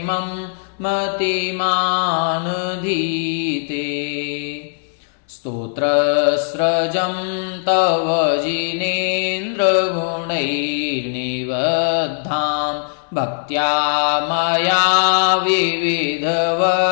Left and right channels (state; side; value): silent; right; 66 dB below the other